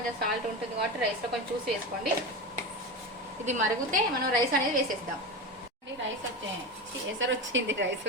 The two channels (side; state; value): both; normal; correlation 0.23